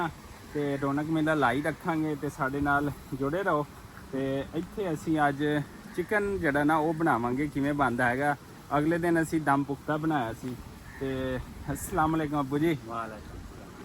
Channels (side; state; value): both; identical; correlation 1.00